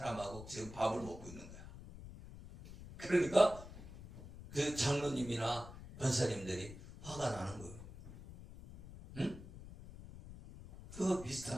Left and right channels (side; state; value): left; noise; rumble, 14 dB below the sound